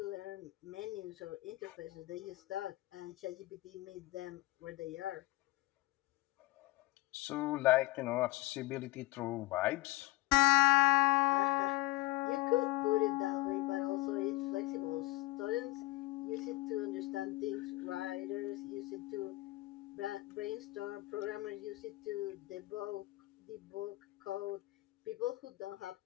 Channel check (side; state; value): right; quieter; 19.7 dB